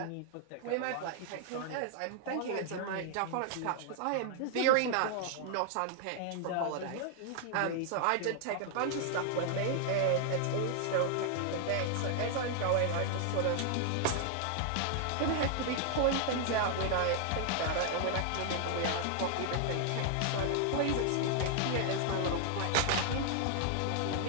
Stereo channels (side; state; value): both; different; correlation 0.00